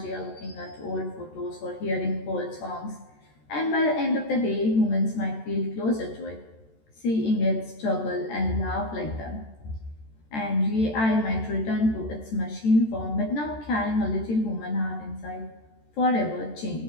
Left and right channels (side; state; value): right; late; 13 ms